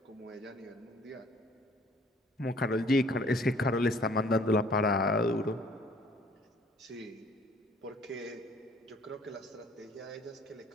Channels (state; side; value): normal; both; correlation 0.57